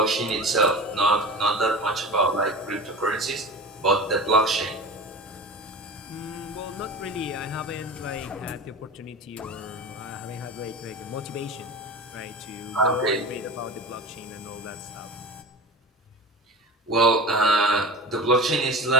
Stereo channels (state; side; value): normal; both; correlation 0.32